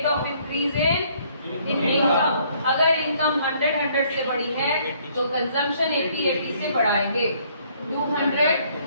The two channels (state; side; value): inverted; both; correlation -0.64